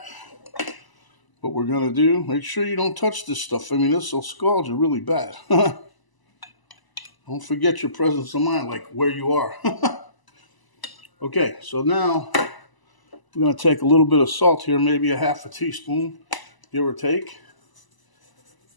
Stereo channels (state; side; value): late; right; 1.0 ms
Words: what we're going to do, make sure you don't touch this stuff. I mean, this will scald you really bad. Don't forget your presence of mind, like where you are. Okay, so now we're going to take a little bit of salt here, maybe a ½ teaspoon, give or take.